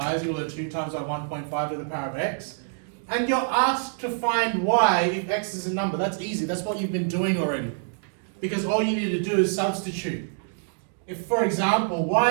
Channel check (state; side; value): silent; left; digital silence